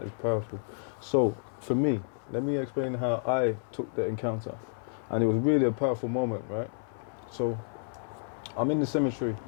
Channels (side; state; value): right; silent; 57 dB below the other